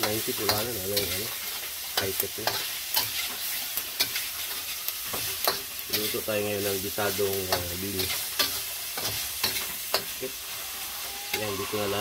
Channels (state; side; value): identical; both; correlation 1.00